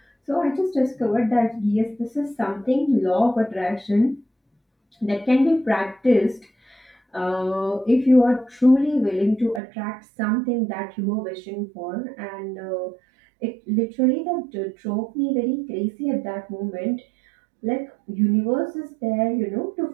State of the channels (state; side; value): drops out; left; at 9.6 s